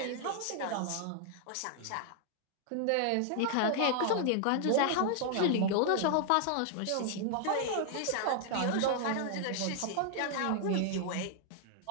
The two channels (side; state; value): both; different; correlation 0.00